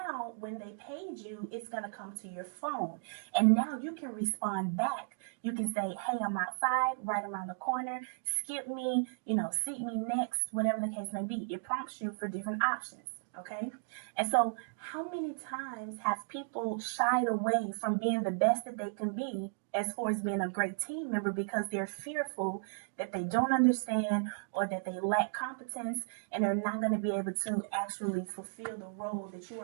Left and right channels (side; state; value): left; silent; digital silence